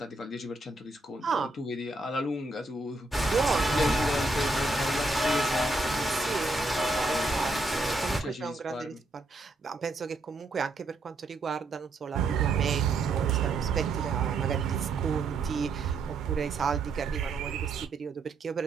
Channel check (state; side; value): quieter; left; 3.1 dB